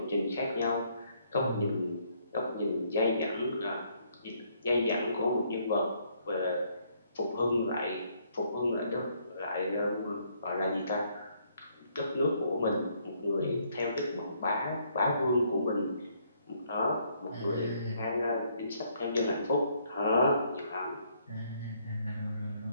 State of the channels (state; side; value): inverted; both; correlation -0.69